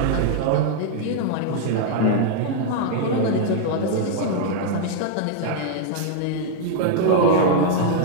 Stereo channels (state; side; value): different; both; correlation -0.01